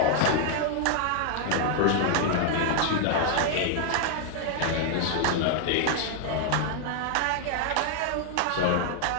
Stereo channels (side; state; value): both; different; correlation 0.00